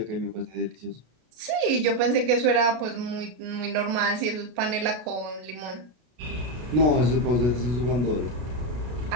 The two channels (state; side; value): late; left; 33 ms